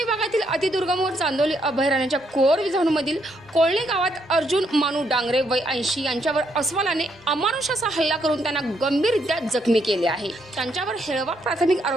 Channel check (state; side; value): normal; both; correlation 0.75